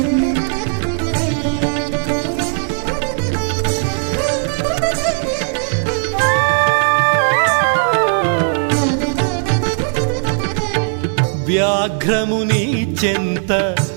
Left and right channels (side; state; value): left; silent; 68 dB below the other